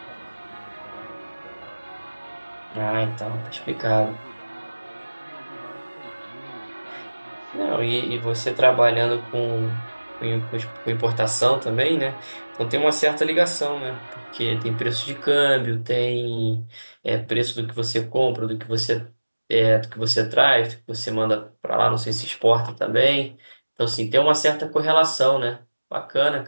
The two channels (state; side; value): inverted; both; correlation -1.00